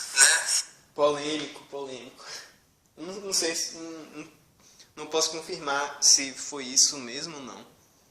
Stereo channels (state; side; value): identical; both; correlation 1.00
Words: né? Polêmico. Não sei se... Não posso confirmar se foi isso mesmo ou não.